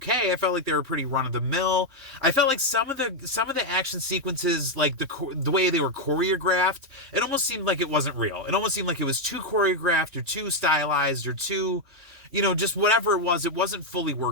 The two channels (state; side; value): late; left; 3.3 ms